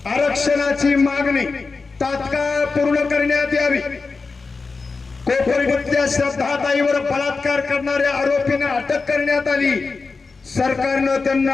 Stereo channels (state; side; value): quieter; right; 4.3 dB